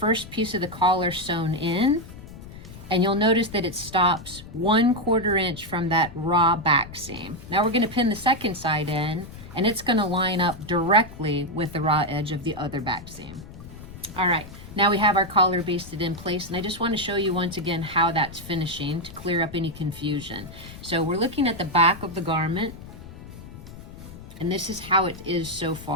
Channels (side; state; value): left; noise; rumble, 15 dB below the sound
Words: piece of the collar sewn in, and you'll notice that it stops 1/4 inch from that raw back seam. Now we're going to pin the second side in, and it's going to line up directly with the raw edge of the other back seam. All right, now we have our collar basted in place, and I just want to show you once again how that's finishing to clear up any confusion. So we're looking at the back of the garment, and this is how it is so